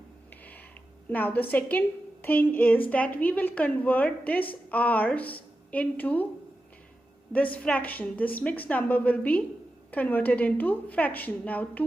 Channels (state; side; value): normal; both; correlation 0.91